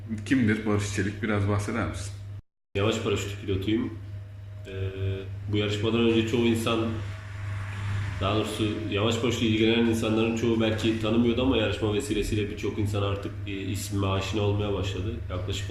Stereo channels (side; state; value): both; identical; correlation 1.00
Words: Kimdir Barış Çelik? Biraz bahseder misin? Yamaç paraşütü pilotuyum. Bu yarışmadan önce çoğu insan, daha doğrusu yamaç paraşütü ilgilenen insanların çoğu belki tanımıyordu ama yarışma vesilesiyle birçok insan artık ismime aşina olmaya başladı. Yaklaşık